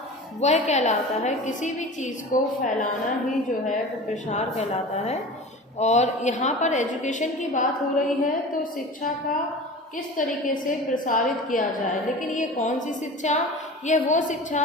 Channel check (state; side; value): normal; both; correlation 0.36